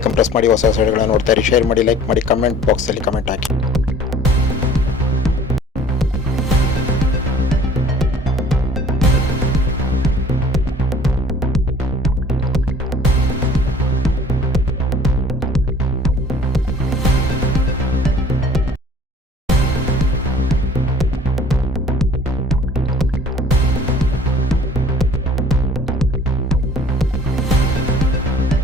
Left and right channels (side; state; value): both; normal; correlation 0.51